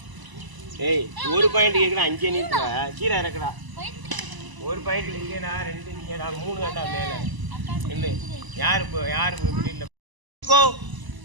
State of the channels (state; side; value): late; left; 1.0 ms